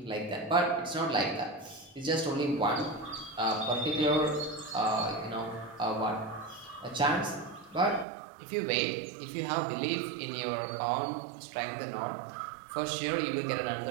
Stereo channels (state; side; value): drops out; left; at 8.1 s